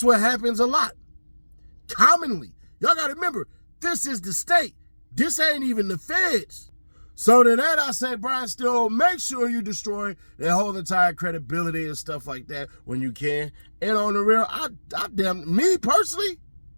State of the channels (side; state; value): both; inverted; correlation -1.00